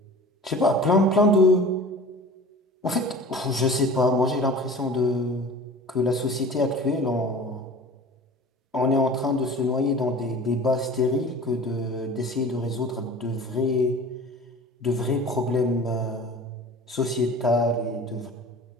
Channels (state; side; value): normal; both; correlation 0.41